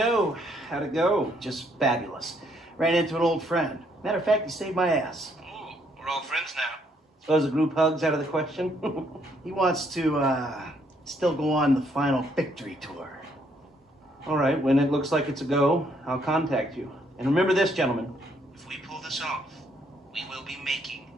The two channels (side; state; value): both; normal; correlation 0.70